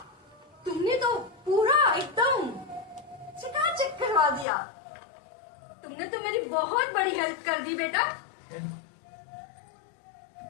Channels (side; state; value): right; drops out; at 4.5 s